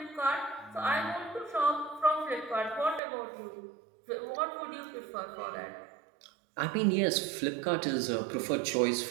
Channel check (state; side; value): drops out; left; at 3.0 s